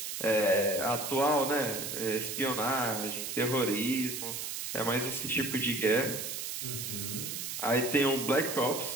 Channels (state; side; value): noise; right; hiss, 5 dB below the sound